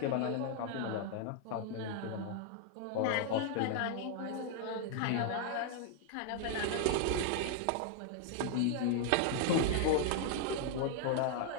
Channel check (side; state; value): both; different; correlation 0.00